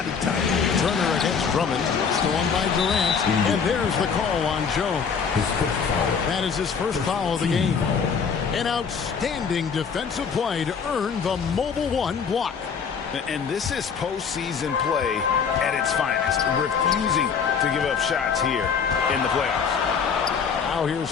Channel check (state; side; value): quieter; right; 6.3 dB